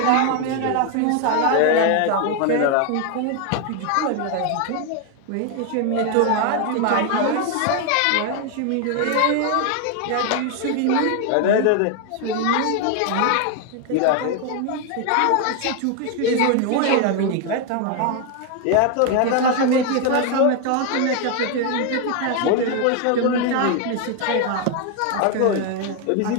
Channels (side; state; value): both; different; correlation 0.01